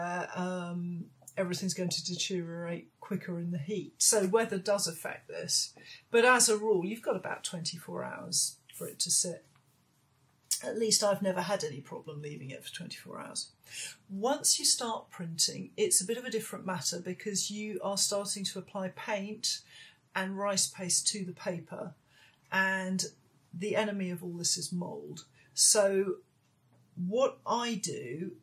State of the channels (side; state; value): both; identical; correlation 1.00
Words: everything's going to deteriorate quicker in the heat. So weather does affect this. But as a rule, you've got about 24 hours for it to sit. At least I've never had any problem leaving it for 24 hours. Once you start printing, it's a bit of a different matter because you are starting to apply paint and rice paste to the paper, and the enemy of all this is mould. So what I do